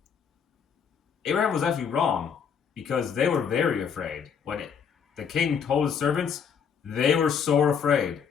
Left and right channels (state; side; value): quieter; right; 7.0 dB